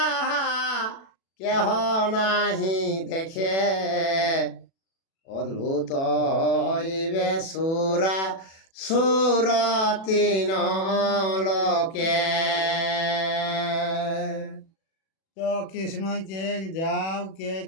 কেহ নাহি দেখে, অদ্ভুত হইবে সুরা সুরতিন লোকে। তো কৃষ্ণই কে যাও কে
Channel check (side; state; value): right; late; 37 ms